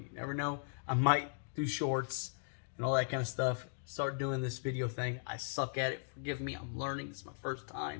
You never know. I might do shorts and all that kind of stuff. Start doing this video thing. I suck at it. Forgive me. I'm learning. This is my first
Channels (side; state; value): right; silent; digital silence